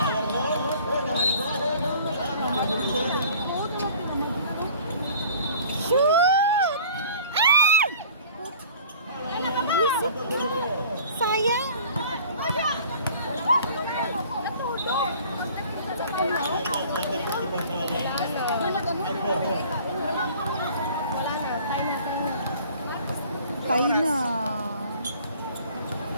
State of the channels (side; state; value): both; inverted; correlation -0.49